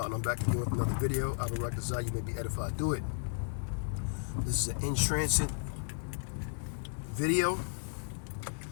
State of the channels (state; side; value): silent; right; digital silence